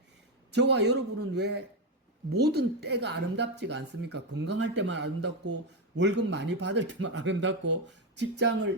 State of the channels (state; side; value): normal; both; correlation 0.07